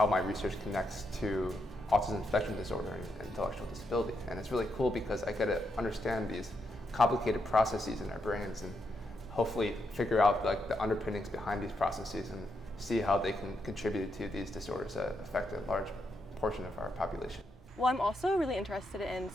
my research connects to autism spectrum disorder and intellectual disability. And it's really cool because I get to understand these complicated processes in our brains and hopefully figure out like the underpinnings behind these processes and see how they can contribute to these disorders that affect a large portion of our population. Well, I'm also really interested in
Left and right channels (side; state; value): both; normal; correlation 0.81